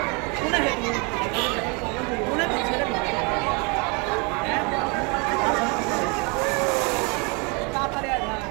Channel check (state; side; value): quieter; left; 31.5 dB